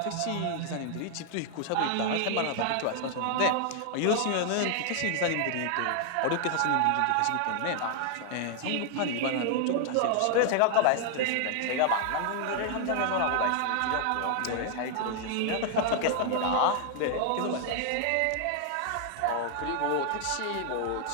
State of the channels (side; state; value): both; different; correlation 0.00